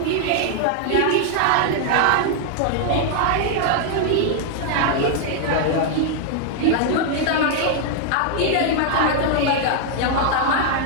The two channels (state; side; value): different; both; correlation 0.00